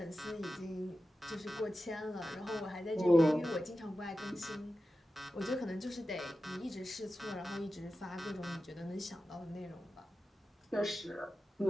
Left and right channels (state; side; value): normal; both; correlation 0.93